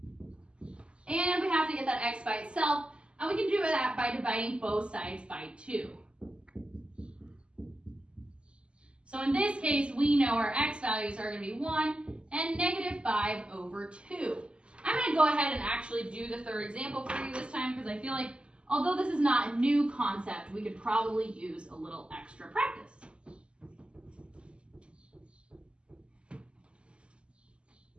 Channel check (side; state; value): left; late; 0.052 ms